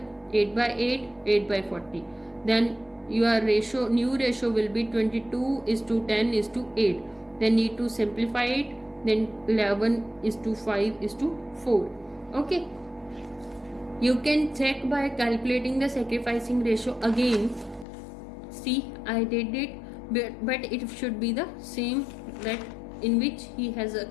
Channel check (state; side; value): drops out; right; at 17.9 s